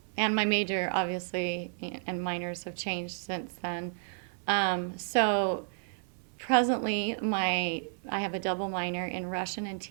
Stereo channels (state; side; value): silent; left; 57 dB below the other